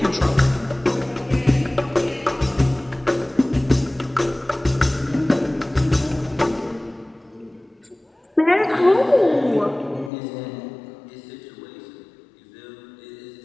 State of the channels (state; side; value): drops out; right; at 10.1 s